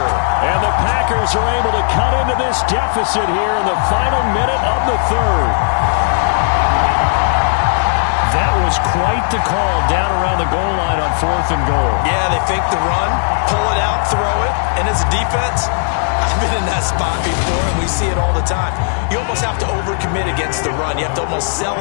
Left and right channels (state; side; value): silent; right; digital silence